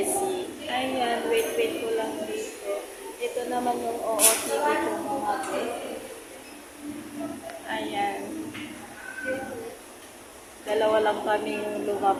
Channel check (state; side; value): identical; both; correlation 1.00